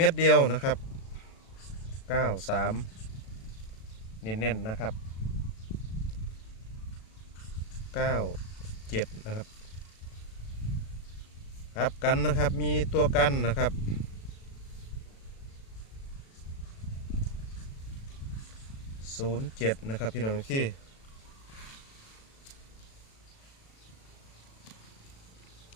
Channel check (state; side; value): late; right; 36 ms